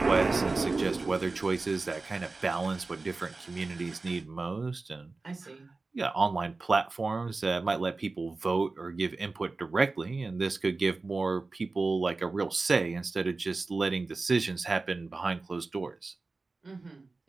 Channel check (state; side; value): quieter; left; 3.6 dB